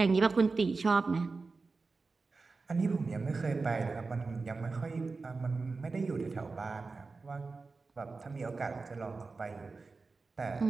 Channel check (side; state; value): left; quieter; 4.1 dB